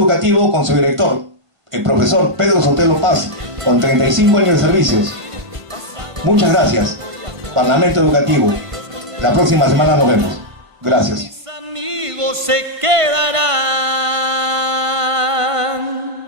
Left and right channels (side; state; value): left; late; 1.5 ms